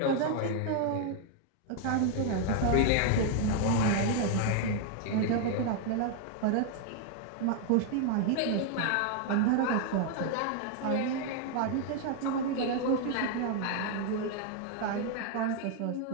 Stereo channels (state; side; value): different; both; correlation 0.00